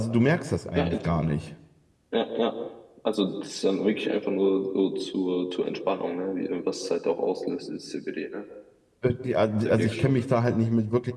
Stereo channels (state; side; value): identical; both; correlation 1.00